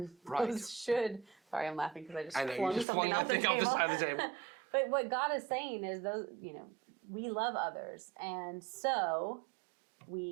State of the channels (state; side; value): drops out; left; at 2.9 s